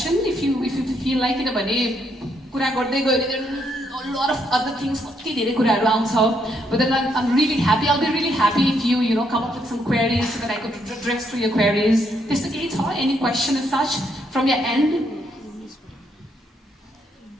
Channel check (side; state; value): both; normal; correlation 0.74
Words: If you feel like it, भने कुरा गर्दै गयो भने a lot of other things, कति धेरै कुराहरू आउँछ. But then I'm really happy. I'll be really happy if you come up with some queries so that I could address to your queries. त्यस्तो केही छ? Any question as such from your end?